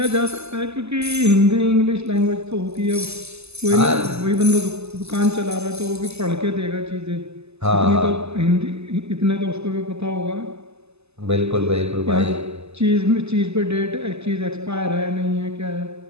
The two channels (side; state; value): left; late; 0.80 ms